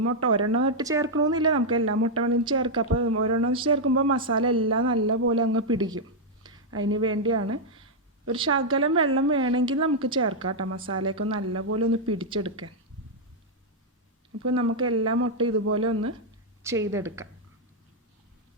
മുട്ട ഒരെണ്ണം ഇട്ട് ചേർക്കണമെന്നില്ല, നമുക്ക് എല്ലാ മുട്ട വേണമെങ്കിൽ ചേർക്കാം. അപ്പോൾ ഒരെണ്ണം ചേർക്കുമ്പോൾ മസാല എല്ലാം നല്ലപോലെ അങ്ങ് പിടിക്കും. അതിന് വേണ്ടിയാണ്. ഒരു ശകലം വെള്ളം വേണമെങ്കിൽ നമുക്ക് ചേർക്കാം കേട്ടോ, മസാലയൊക്കെ നല്ലപോലെ ഒന്ന് പിടിച്ചെടുക്കാൻ. അപ്പോൾ നമുക്ക് എല്ലാ മുട്ട ഇതുപോലെ ഒന്ന് ചെയ്തെടുക്കാം.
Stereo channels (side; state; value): both; normal; correlation -0.03